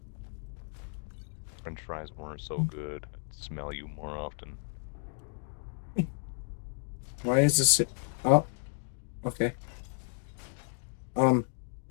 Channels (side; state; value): right; silent; 56 dB below the other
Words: French fries weren't so good. I'd smell you more often. Why is this? Oh, okay.